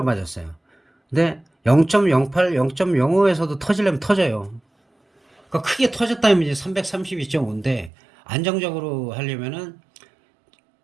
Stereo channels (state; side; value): drops out; left; at 7.9 s